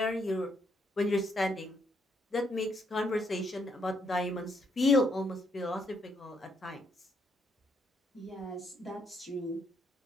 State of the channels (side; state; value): both; normal; correlation 0.74